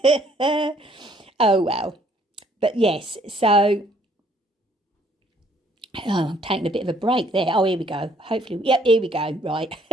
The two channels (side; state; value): both; normal; correlation 0.64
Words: eh? Oh well. But yes, so I'm taking a bit of a break there. Oh, here we go. Hopefully, yep, here we go. Right.